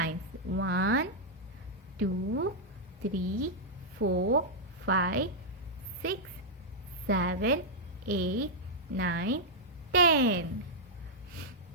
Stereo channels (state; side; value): normal; both; correlation -0.06